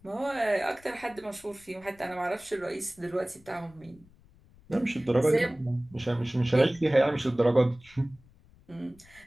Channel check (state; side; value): noise; left; rumble, 27 dB below the sound